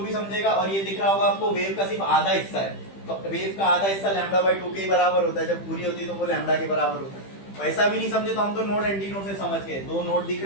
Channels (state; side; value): late; right; 15 ms